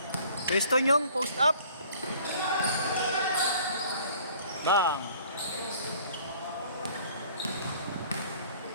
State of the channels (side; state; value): both; inverted; correlation -0.53